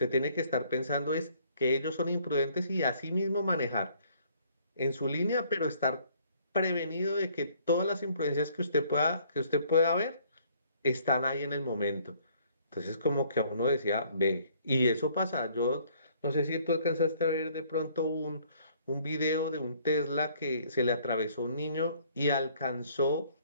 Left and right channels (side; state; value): both; inverted; correlation -0.61